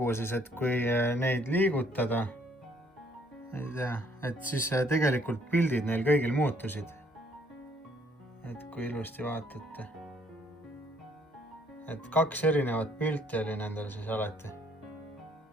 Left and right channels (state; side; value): normal; both; correlation 0.64